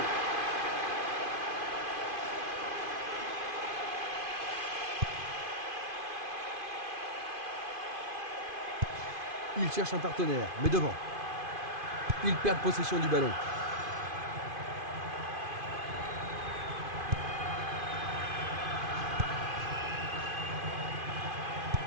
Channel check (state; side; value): late; left; 2.5 ms